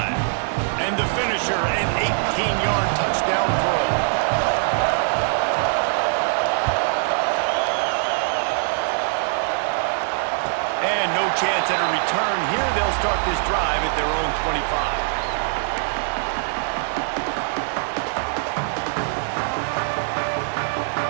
And the finisher, an 18-yard touchdown throw. And no chance at a return here. They'll start this drive at their own 25.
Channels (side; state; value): left; silent; digital silence